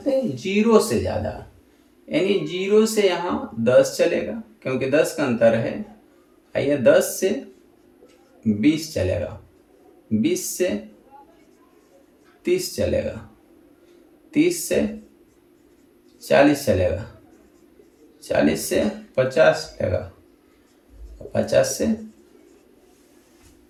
0 से ज़्यादा, यानी 0 से यहाँ 10 चलेगा क्योंकि 10 का अंतर है। आइए 10 से 20 चलेगा, 20 से 30 चलेगा, 30 से 40 चलेगा, 40 से 50 चलेगा, 50 से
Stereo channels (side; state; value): both; identical; correlation 1.00